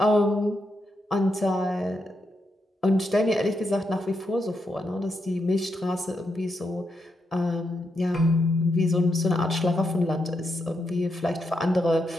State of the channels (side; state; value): both; normal; correlation 0.82